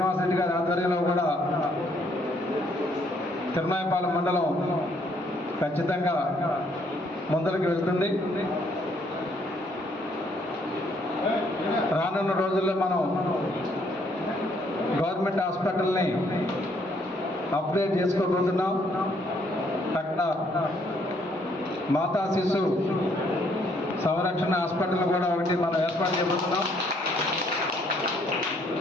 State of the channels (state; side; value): normal; both; correlation 0.68